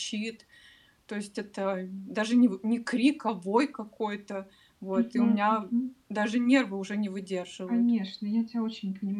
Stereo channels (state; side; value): identical; both; correlation 1.00